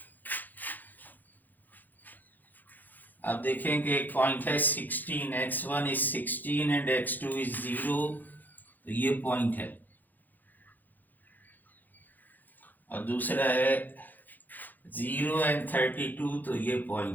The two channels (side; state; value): right; late; 0.085 ms